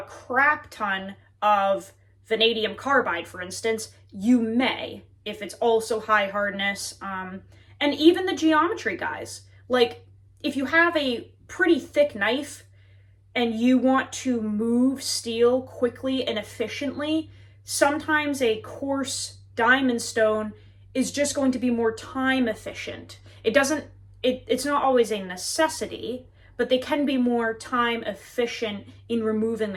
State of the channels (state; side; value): identical; both; correlation 1.00